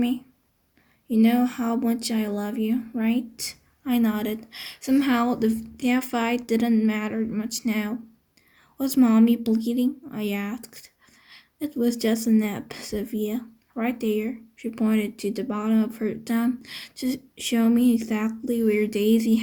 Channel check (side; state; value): both; identical; correlation 1.00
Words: You know how much I love you, right?" I nodded. Somehow that fight didn't matter much now. "Was Mommy bleeding?" I asked. "It was just a nip," said Via. "Right there." She pointed to the bottom of her thumb to show me exactly where Daisy